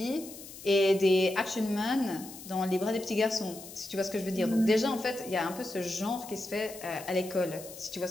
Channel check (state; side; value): noise; left; hiss, 15 dB below the sound